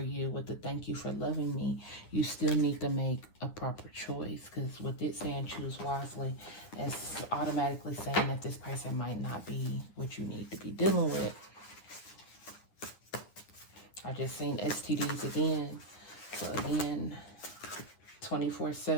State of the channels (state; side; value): late; right; 9.9 ms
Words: with the thank you for loving me, you still need to make a proper choice, because with it saying choose wisely, it's automatically saying that this person might not be what you need to be dealing with. I just seen STDs again. So again,